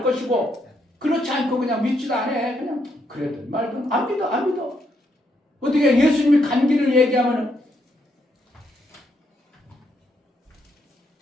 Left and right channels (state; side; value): normal; both; correlation 0.76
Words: 것이고 그렇지 않고 그냥 믿지도 않아. 그냥 그래든 말든 안 믿어. 어떻게 예수님이 간기를 얘기하면은